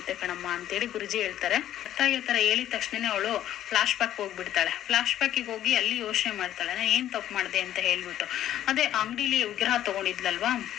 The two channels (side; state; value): right; quieter; 11.9 dB